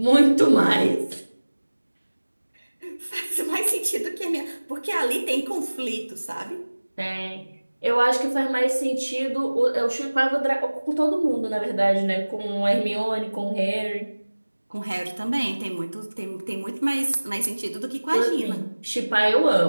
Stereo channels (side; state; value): both; inverted; correlation -1.00